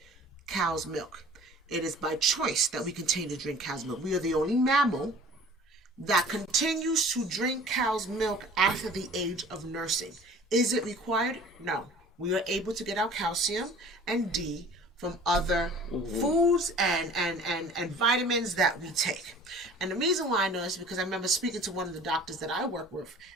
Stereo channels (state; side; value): normal; both; correlation 0.47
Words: cow's milk. It is by choice that we continue to drink cow's milk. We are the only mammal that continues to drink cow's milk after the age of nursing. Is it required? No. We are able to get our calcium and D from other foods and vitamins that we take. And the reason why I know this is because I remember speaking to one of the doctors that I work with,